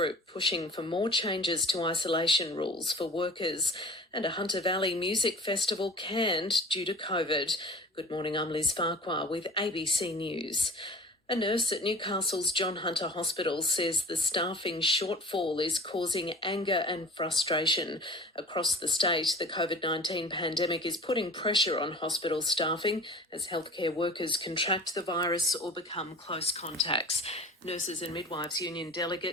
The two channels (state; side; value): normal; both; correlation 0.41